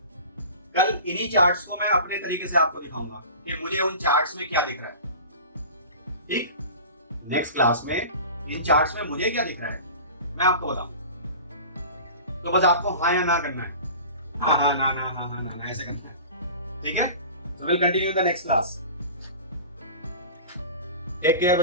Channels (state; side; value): inverted; both; correlation -0.37